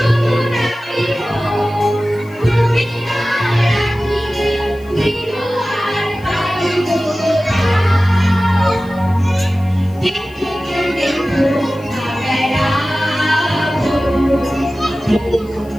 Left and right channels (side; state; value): left; noise; hiss, 28 dB below the sound